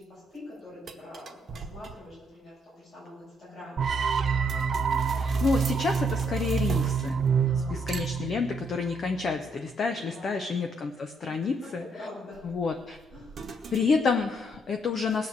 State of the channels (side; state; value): both; normal; correlation 0.72